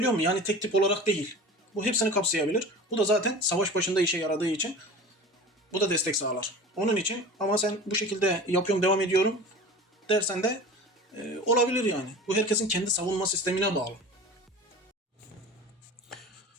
muyum? Yani tek tip olarak değil. Bu hepsini kapsayabilir. Bu da zaten savaş başında işe yaradığı için bu da destek sağlar. Onun için ama sen bu şekilde yapıyorum devam ediyorum dersen de olabilir yani. Bu herkesin kendi savunma sistemine bağlı.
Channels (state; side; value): normal; both; correlation 0.37